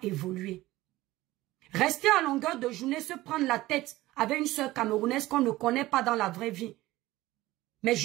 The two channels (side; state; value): left; quieter; 17.5 dB